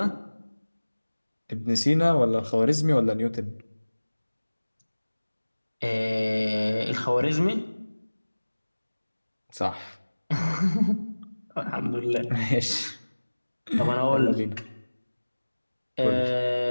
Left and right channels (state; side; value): inverted; both; correlation -1.00